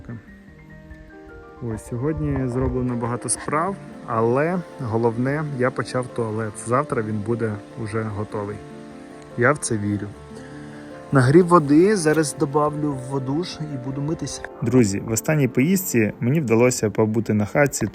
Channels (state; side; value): identical; both; correlation 1.00